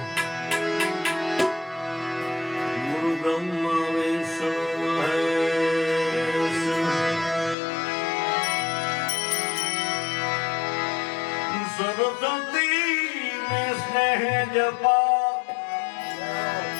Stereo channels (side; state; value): right; drops out; at 7.6 s